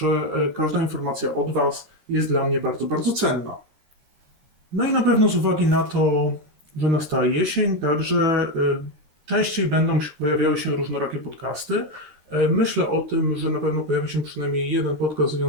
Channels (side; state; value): left; late; 13 ms